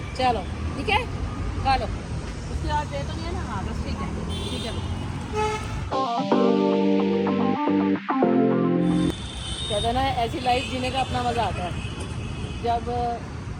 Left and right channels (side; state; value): both; identical; correlation 1.00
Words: चलो ठीक है, खा लो। उसके बाद दे तो नहीं है ना? हाँ बस ठीक है, ठीक है। कहते ना ऐसी लाइफ जीने का अपना मज़ा आता है। जब